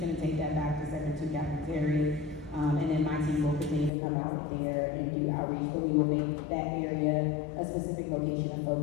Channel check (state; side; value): drops out; right; at 3.9 s